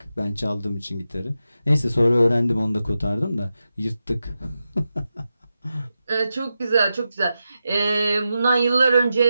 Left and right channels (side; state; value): both; inverted; correlation -0.90